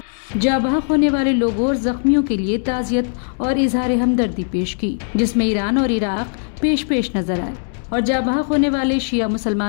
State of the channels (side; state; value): right; silent; 66 dB below the other